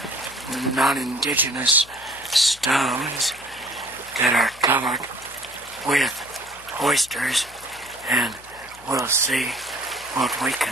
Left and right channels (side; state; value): left; noise; hum, 23 dB below the sound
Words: non-indigenous stones that are covered with oysters, and we'll see what we